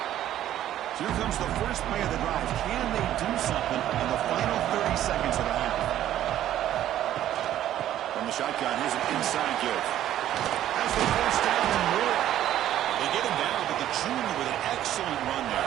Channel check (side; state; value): left; quieter; 12.2 dB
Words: So here comes the first play of the drive. Can they do something in the final 30 seconds of the half? From the shotgun, here's an inside give. Has the first down and more. They get him down, but the junior with an excellent run